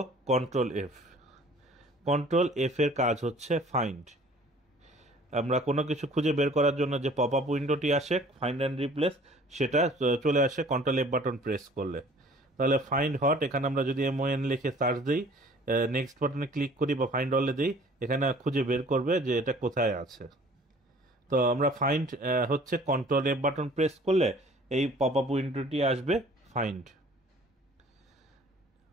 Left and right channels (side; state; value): both; normal; correlation 0.51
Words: কন্ট্রোল এফ। কন্ট্রোল এফ এর কাজ হচ্ছে ফাইন্ড। আমরা কোনো কিছু খুঁজে বের করার জন্য যে পপ আপ উইন্ডোটি আসে ফাইন্ড অ্যান্ড রিপ্লেস, সেটা চলে আসে কন্ট্রোল এফ বাটন প্রেস করলে। তাহলে ফাইন্ড হট, এখানে আমরা যদি MON লিখে সার্চ দিই, নেক্সট বাটনে ক্লিক করি বা ফাইন্ড অলে দিই, এখানে খুঁজে বের করবে যে এটা কোথায় আছে। তো আমরা ফাইন্ড হচ্ছে কন্ট্রোল এফ বাটন প্রেস করলে এই পপ আপ উইন্ডোটি আসবে ফাইন্ড।